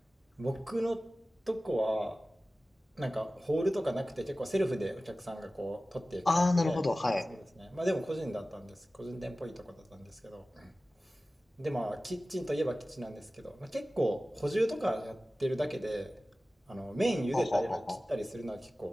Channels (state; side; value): normal; both; correlation 0.96